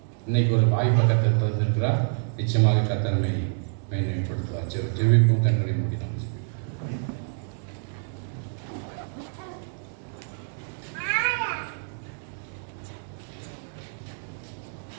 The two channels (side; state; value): left; silent; digital silence